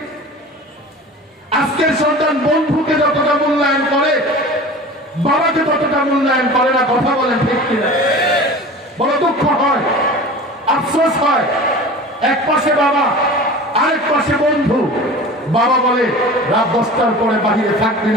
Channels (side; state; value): both; normal; correlation 0.37